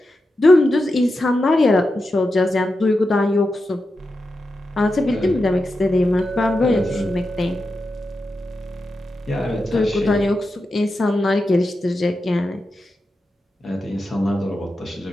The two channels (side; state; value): both; normal; correlation 0.89